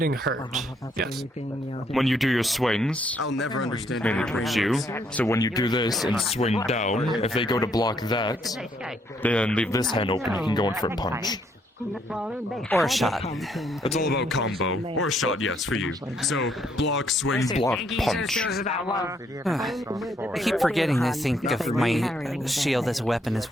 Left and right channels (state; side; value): normal; both; correlation 0.71